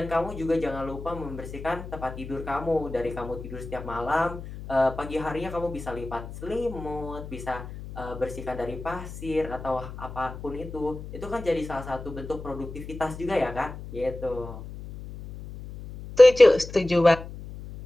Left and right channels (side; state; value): left; noise; hum, 11 dB below the sound